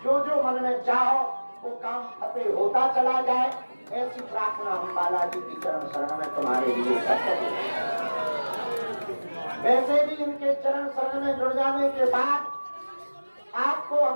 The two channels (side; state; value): both; inverted; correlation -1.00